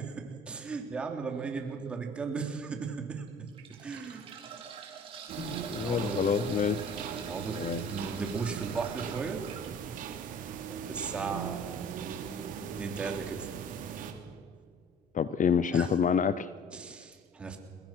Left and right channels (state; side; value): normal; both; correlation 0.48